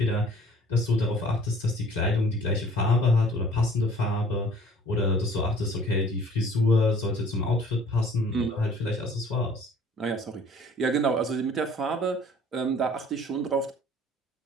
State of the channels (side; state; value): both; normal; correlation 0.52